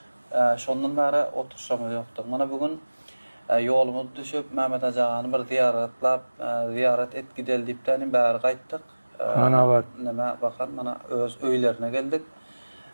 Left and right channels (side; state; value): both; inverted; correlation -1.00